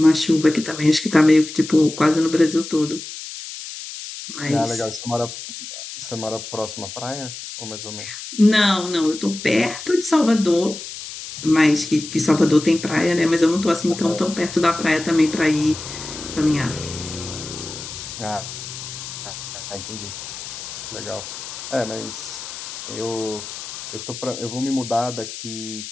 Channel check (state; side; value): noise; left; hiss, 10 dB below the sound